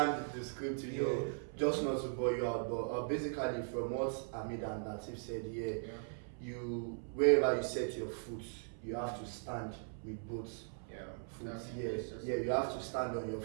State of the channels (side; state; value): left; silent; 52 dB below the other